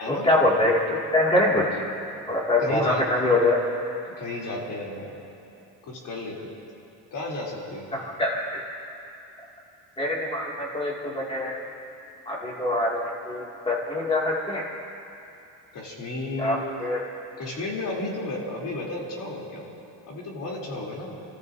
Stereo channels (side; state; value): both; normal; correlation 0.32